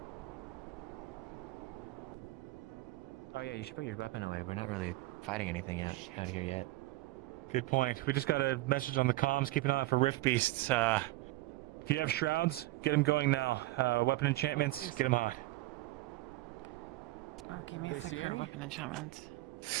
Oh yeah, you should put your weapon away. We're not really fighting anything yet out here yet. Good point. We just got a message on the comms. Keep an eye out for rift beasts. If you have shrouds, get them going now. Weapon enchantments, get them hot. Oh, give me a They see second. any? Weapon enchantment.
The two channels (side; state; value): left; quieter; 19.0 dB